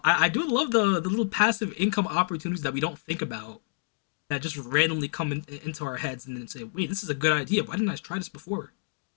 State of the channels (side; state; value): right; silent; digital silence